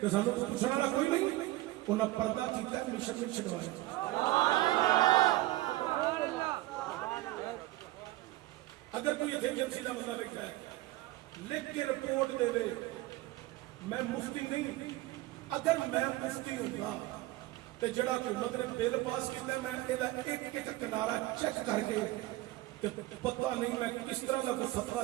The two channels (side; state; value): left; quieter; 17.9 dB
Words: تے سانوں پوچھنے والا کوئی نہیں. انہاں پردہ کیتا ہے مشن میں چھڈوایا. اگر کوئی ایجنسی کا بندہ بیٹھا ہے لکھ کے رپورٹ دے دے میں مفتی نہیں, اگر میں مفتی ہوں گا تو جڑا حکومت نے بل پاس کیتا ہے میں یہ ایک ایک کنارا چیک کر کے پتہ نہیں میں کس طرح کا کوئی فتویٰ